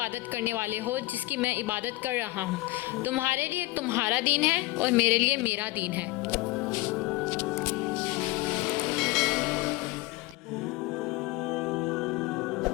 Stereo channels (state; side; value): quieter; right; 20.4 dB